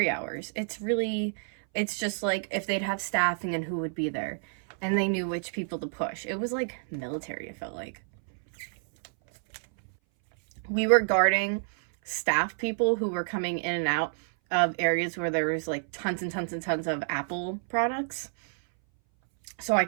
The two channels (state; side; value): silent; left; 59 dB below the other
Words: hours. It's just like if they'd have staffing and who would be there. And they knew which people to push. It was like military, it felt like. We were guarding staff people who were coming in and out of areas where there was like tons and tons and tons of Apple products. So I